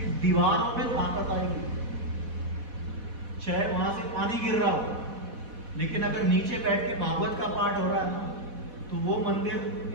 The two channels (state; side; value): late; left; 4.1 ms